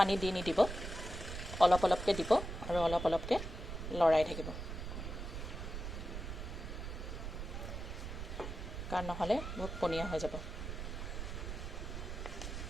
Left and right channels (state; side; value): noise; right; rumble, 6 dB below the sound